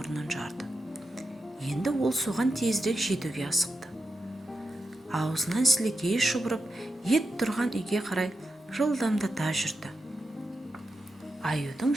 жарды. Енді ол соған тезірек жетуге асықты. Аузынан сілекейі шұбырып, ет тұрған үйге қарай жылдамдата жүрді. Аюдың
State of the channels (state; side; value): normal; both; correlation 0.88